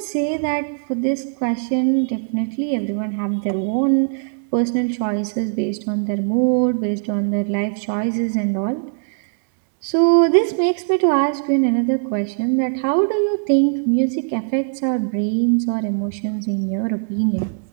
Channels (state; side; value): silent; left; digital silence